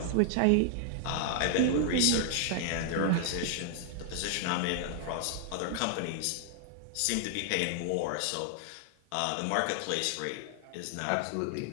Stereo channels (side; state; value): both; different; correlation 0.00